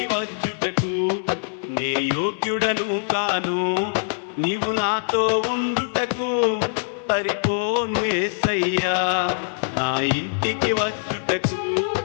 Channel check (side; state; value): right; silent; 62 dB below the other